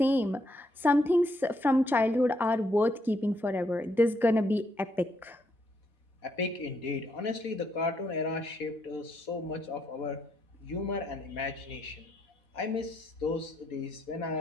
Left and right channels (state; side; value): normal; both; correlation 0.75